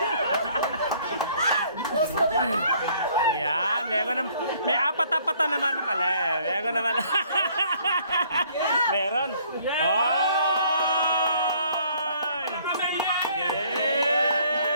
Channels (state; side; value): inverted; both; correlation -0.61